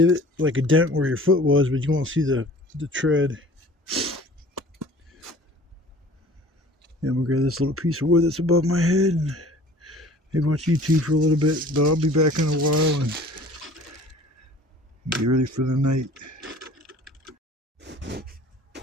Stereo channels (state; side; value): normal; both; correlation 0.47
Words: like a dent where your foot was, but you won't see the tread. And we'll grab this little piece of wood that's above my head and maybe watch YouTube for a little bit, but I'll be back in a while and get ready for the night.